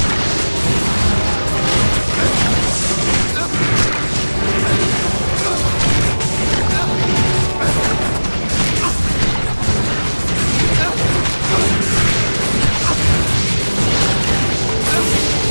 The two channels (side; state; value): both; inverted; correlation -1.00